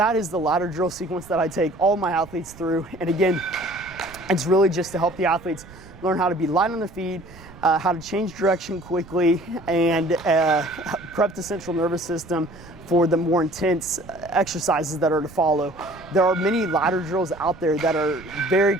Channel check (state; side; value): noise; right; rumble, 19 dB below the sound